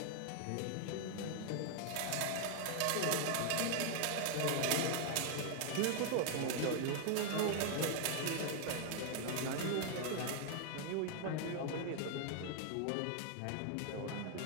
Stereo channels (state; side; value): different; both; correlation 0.00